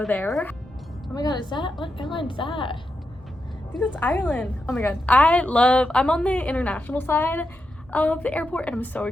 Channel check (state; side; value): normal; both; correlation 0.87